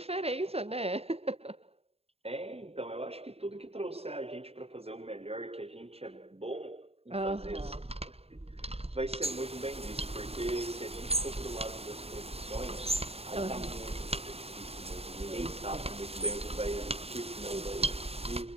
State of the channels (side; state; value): left; late; 0.29 ms